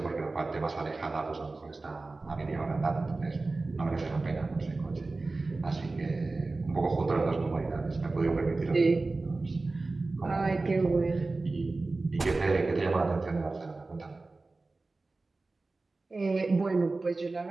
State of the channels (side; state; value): left; quieter; 3.5 dB